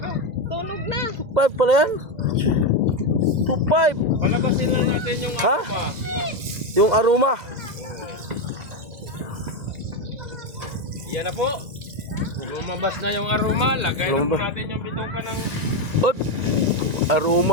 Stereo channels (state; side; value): late; left; 1.9 ms